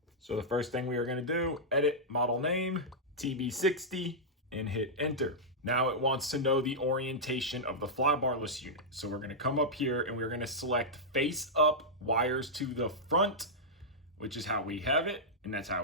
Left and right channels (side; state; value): both; normal; correlation -0.08